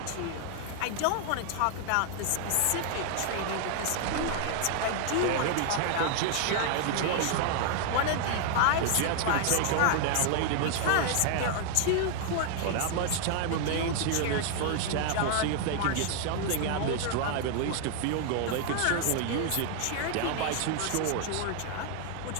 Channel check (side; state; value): both; different; correlation 0.00